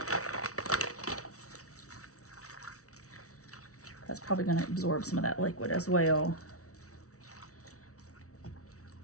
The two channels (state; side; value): late; right; 0.65 ms